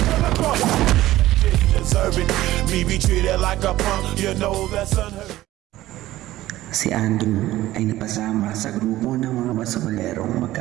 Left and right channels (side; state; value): left; quieter; 15.6 dB